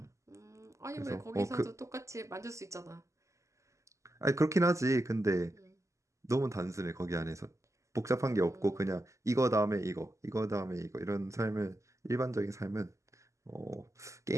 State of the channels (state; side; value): late; left; 0.15 ms